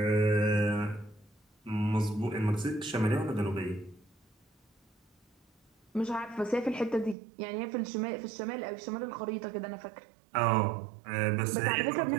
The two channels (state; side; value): drops out; left; at 7.2 s